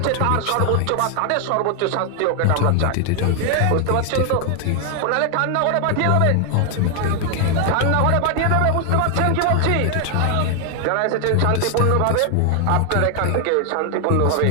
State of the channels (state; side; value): different; both; correlation 0.00